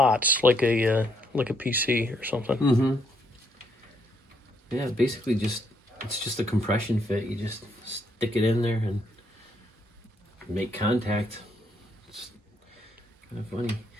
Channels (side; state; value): both; normal; correlation 0.72